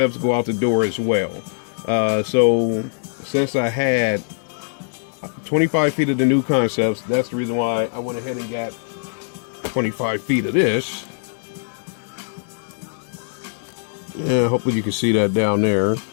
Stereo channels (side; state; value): right; silent; digital silence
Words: go out the door as well. So since I had 25 feet of the New Concepts, that's the reason why I went ahead and got 25 feet of this. Yeah, hopefully you can see that down there.